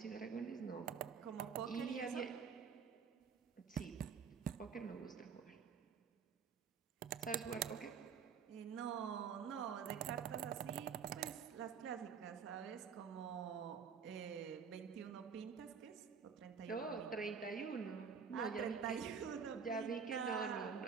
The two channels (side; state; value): left; quieter; 6.4 dB